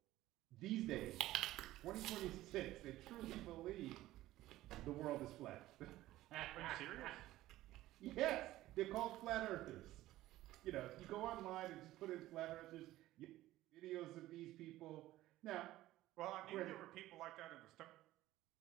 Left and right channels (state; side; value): quieter; left; 15.8 dB